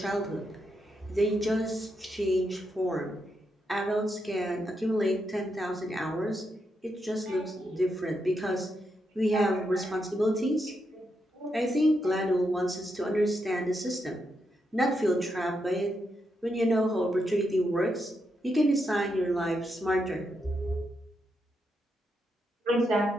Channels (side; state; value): both; normal; correlation 0.82